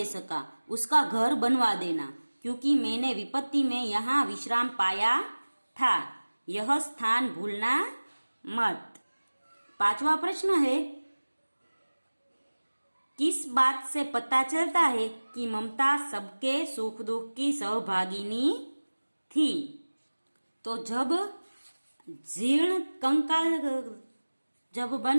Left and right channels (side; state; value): both; inverted; correlation -1.00